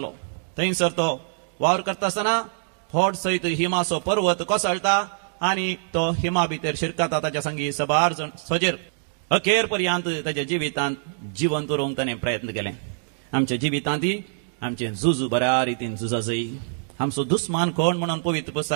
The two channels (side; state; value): left; silent; digital silence